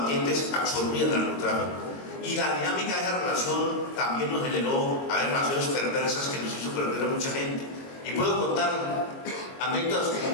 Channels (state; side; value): late; right; 22 ms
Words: absorbían el narcotráfico. Y la dinámica de esa relación también nos generó relaciones perversas que nos hizo perder a mucha gente. Y puedo contar anécdotas